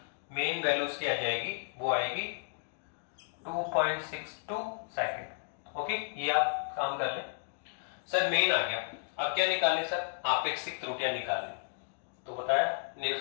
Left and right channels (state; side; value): silent; right; digital silence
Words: मेन वैल्यू उसकी आ जाएगी वो आएगी 2.62 सेकंड। ओके, ये आप काम कर लें। सर मेन आ गया। अब क्या निकालें सर? आपेक्षिक त्रुटियां निकालें। तो बताया